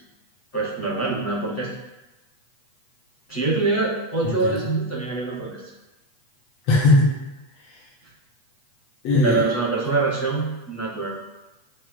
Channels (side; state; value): right; late; 8.3 ms